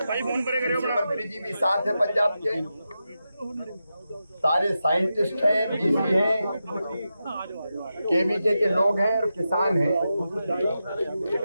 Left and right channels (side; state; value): both; inverted; correlation -0.90